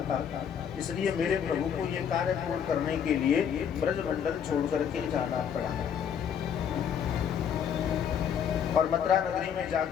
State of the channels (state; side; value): quieter; right; 8.1 dB